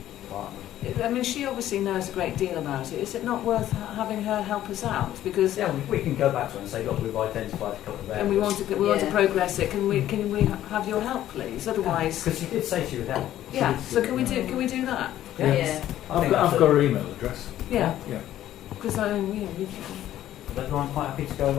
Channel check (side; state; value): right; quieter; 12.7 dB